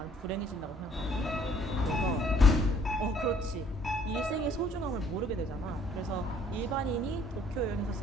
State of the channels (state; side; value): normal; both; correlation 0.61